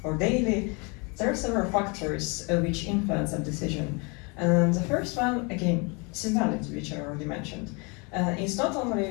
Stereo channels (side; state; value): right; quieter; 31.2 dB